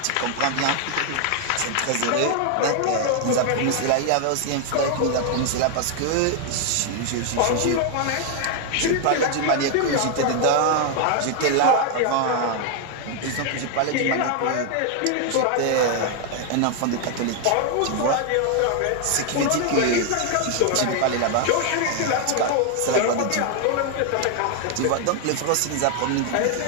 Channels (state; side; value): different; both; correlation 0.00